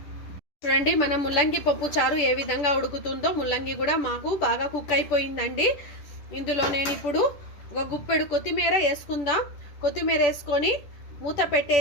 చూడండి మన ముల్లంగి పప్పు చారు ఏ విధంగా ఉడుకుతుందో, ముల్లంగి కూడా మాకు బాగా కుక్ అయిపోయిందండి. ఇందులో నేను ఇప్పుడు ఒక గుప్పెడు కొత్తిమీర వేసుకుందాం. కొత్తిమీర వేసుకొని మూత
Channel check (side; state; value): right; late; 10 ms